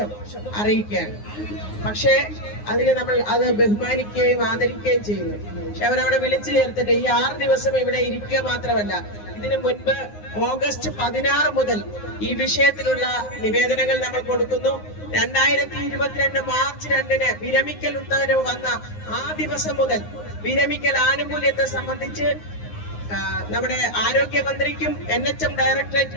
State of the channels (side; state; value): right; late; 9.6 ms